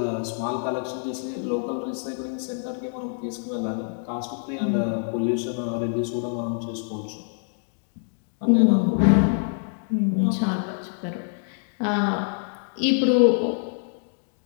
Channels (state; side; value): silent; right; 57 dB below the other